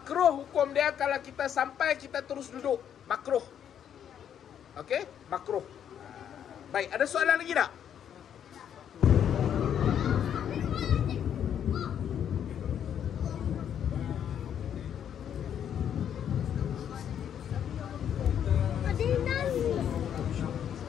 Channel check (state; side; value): quieter; right; 9.1 dB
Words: hukum dia kalau kita sampai kita terus duduk. Makruh. Okey? Makruh. Baik, ada soalan lagi tak?